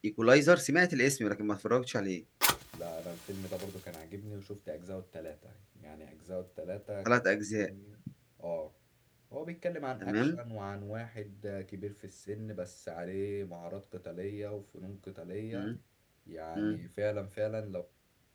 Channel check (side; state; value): both; identical; correlation 1.00